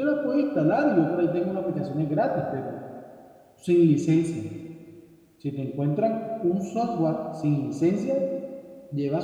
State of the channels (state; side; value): identical; both; correlation 1.00